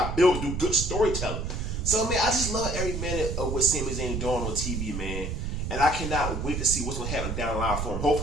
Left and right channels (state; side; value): noise; right; rumble, 3 dB below the sound